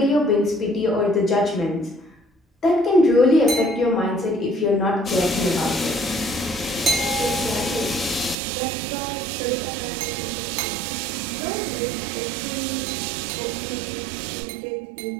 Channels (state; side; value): drops out; left; at 8.3 s